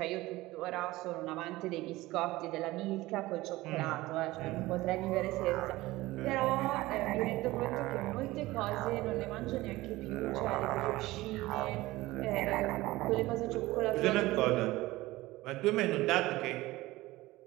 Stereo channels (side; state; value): left; quieter; 18.7 dB